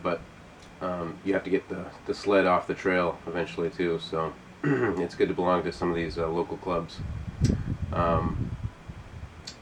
but you have to get the sled off the trail eventually too. So it's good to belong to some of these local clubs.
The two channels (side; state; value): both; identical; correlation 1.00